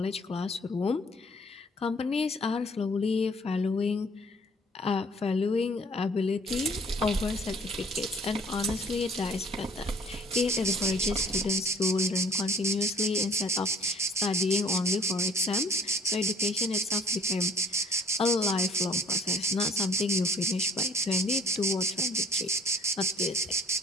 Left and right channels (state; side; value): normal; both; correlation 0.54